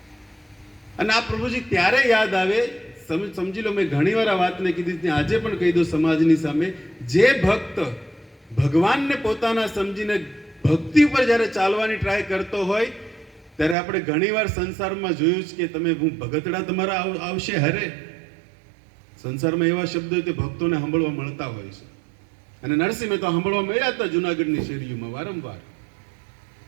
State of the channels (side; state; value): left; drops out; at 13.8 s